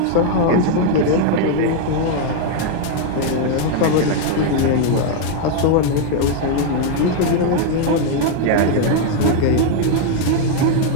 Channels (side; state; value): both; different; correlation 0.00